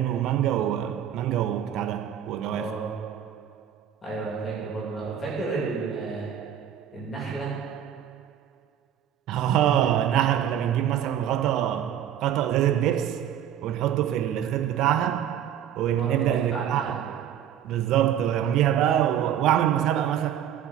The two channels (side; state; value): left; quieter; 10.0 dB